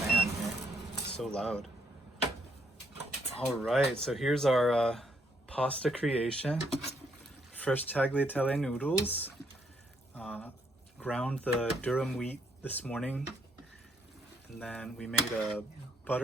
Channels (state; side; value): normal; both; correlation 0.72